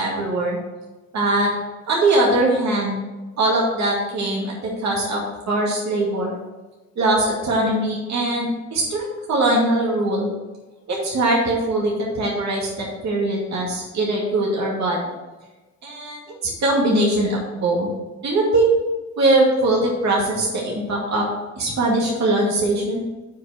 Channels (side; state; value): both; normal; correlation 0.23